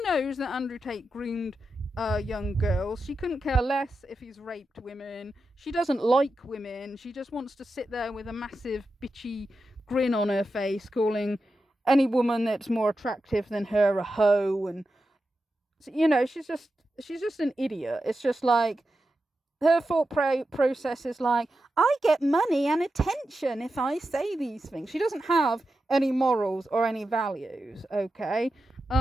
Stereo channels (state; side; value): normal; both; correlation 0.90